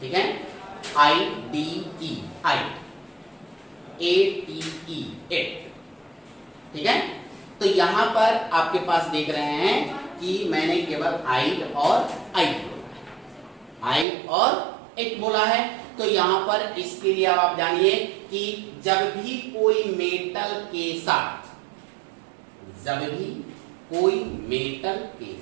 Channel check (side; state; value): left; drops out; at 14.1 s